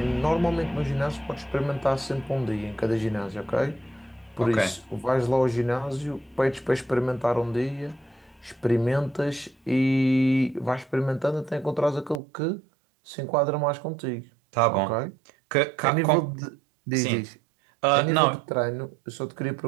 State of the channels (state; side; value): drops out; left; at 12.2 s